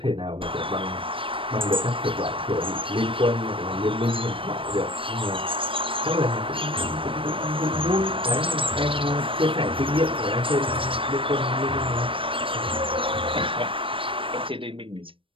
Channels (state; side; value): late; left; 0.25 ms